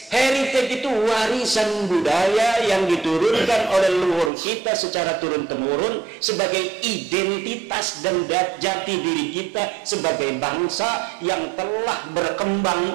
Heritage itu warisan budaya yang diturunkan oleh leluhur kita secara turun-temurun sebagai identitas dan jati diri kita sebagai bangsa yang telah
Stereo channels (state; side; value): drops out; left; at 4.3 s